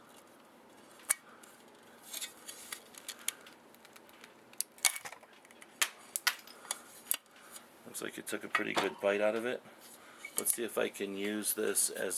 Looks like it took a pretty good bite out of it. Let's see if I can use this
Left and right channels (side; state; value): both; identical; correlation 1.00